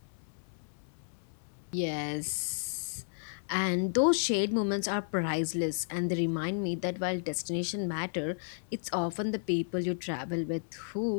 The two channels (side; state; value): right; silent; 56 dB below the other